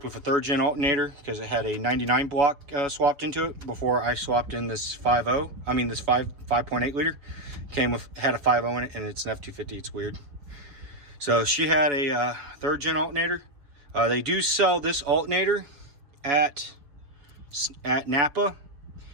with a 3rd gen alternator because it had a 99 block swapped into it before I swapped in this 5.8 liter. Had a 5.0 in it, and it's an F250. It's weird. So she had a 3rd gen alternator. They do sell this alternator at Napa,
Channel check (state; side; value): late; left; 7.1 ms